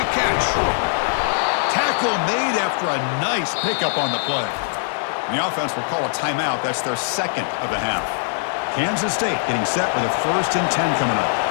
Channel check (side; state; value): right; silent; 65 dB below the other